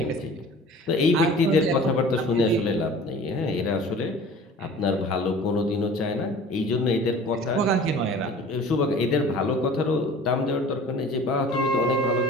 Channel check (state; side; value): normal; both; correlation 0.44